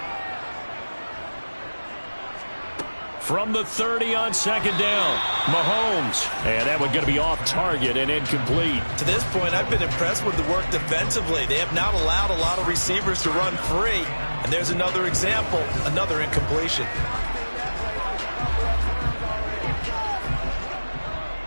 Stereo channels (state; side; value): inverted; both; correlation -1.00